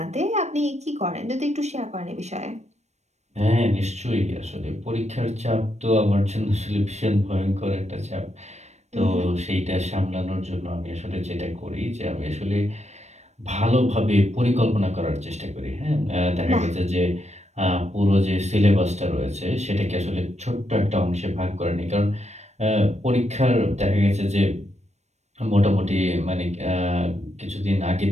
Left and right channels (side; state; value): left; late; 0.32 ms